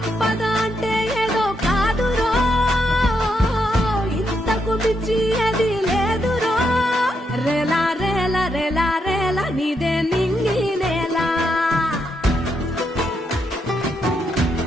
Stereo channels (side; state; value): both; normal; correlation 0.80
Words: అంటే ఏదో కాదురో, ఇంతకు మించి అది లేదురో. రేలా రేలా రేలా రేలా నీదే నింగి నేలా,